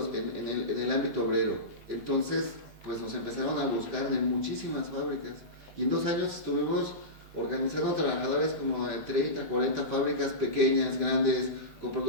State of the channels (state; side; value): late; right; 17 ms